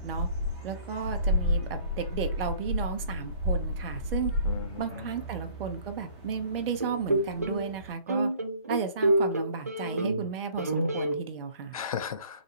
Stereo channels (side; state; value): both; inverted; correlation -0.53